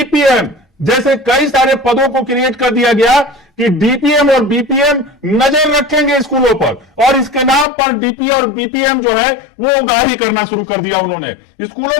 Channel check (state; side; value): drops out; right; at 7.7 s